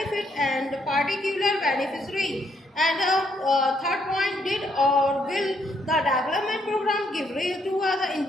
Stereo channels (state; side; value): normal; both; correlation 0.73